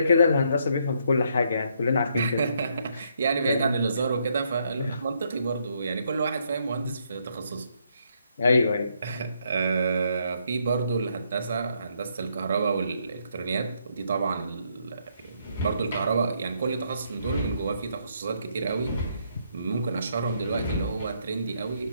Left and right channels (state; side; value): inverted; both; correlation -0.73